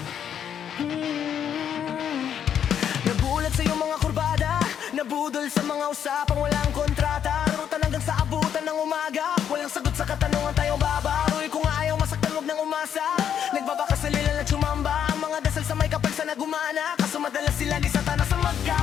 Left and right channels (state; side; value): quieter; right; 8.9 dB